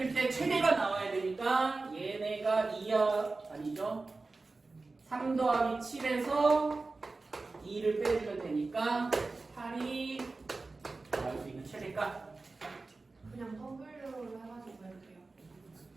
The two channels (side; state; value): left; quieter; 3.6 dB